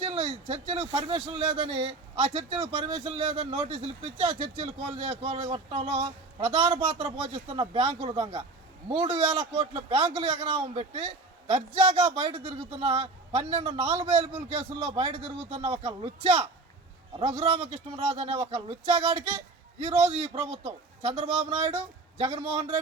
పర్మిషన్ లేదని నోటీసులు ఇప్పించి ఆ చర్చిలు కొట్టడంలో ప్రధాన పాత్ర పోషిస్తున్న బ్యాంకుల దొంగ 3000 కోట్ల బ్యాంకులు ఎగనామం పెట్టి దర్జాగా బయట తిరుగుతున్న 12 నాన్ బెయిలబుల్ కేసుల్లో బయట తిరుగుతున్న ఒక లుచ్చా రఘురామకృష్ణరాజు అనే ఒక లుచ్చాగాడికి ఈరోజు ఈ ప్రభుత్వం చంద్రబాబు నాయుడు, జగన్మోహన్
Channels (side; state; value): left; quieter; 3.5 dB